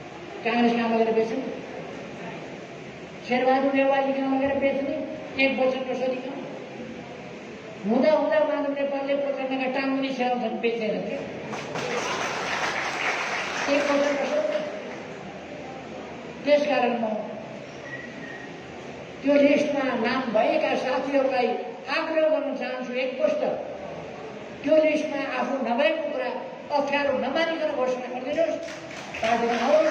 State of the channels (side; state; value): both; identical; correlation 1.00